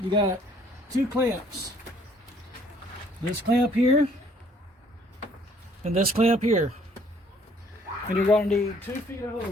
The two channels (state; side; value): normal; both; correlation 0.61